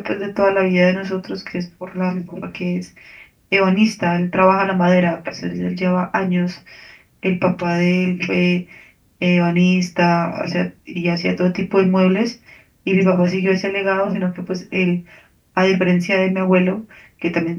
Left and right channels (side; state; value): both; identical; correlation 1.00